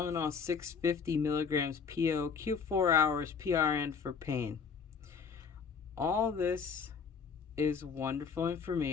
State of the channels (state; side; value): quieter; right; 5.9 dB